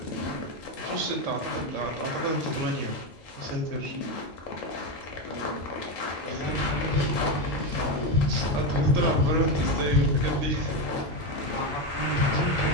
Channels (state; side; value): normal; both; correlation 0.12